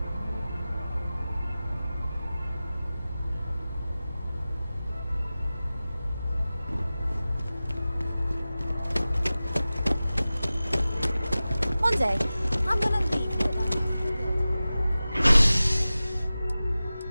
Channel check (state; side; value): inverted; both; correlation -0.96